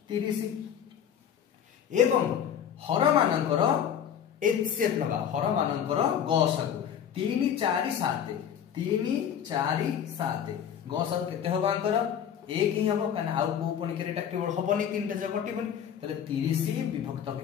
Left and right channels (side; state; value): right; quieter; 8.8 dB